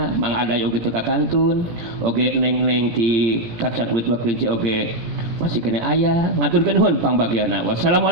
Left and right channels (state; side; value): late; left; 18 ms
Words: Mang Aday oge teka kantun, oge neng-neng ti kacang kulit waklinci oge masih kena aya ngaturkeun nuhun pangbagiana.